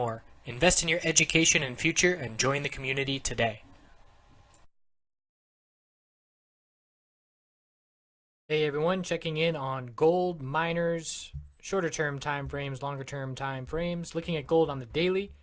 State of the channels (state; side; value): identical; both; correlation 1.00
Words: Invest in your education and future and join the community today. Hey everyone, checking in on gold, miners, shorter term time frames, longer term time frames. Looking at gold on the daily,